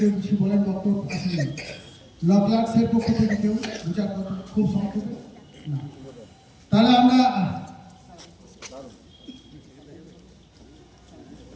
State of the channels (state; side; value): identical; both; correlation 1.00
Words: কিছু বলেন, বক্তব্য আসলে ল ক্লার্কস এর পক্ষ থেকে কেউ দু চার কথা খুব সংক্ষেপে না, তাহলে আমরা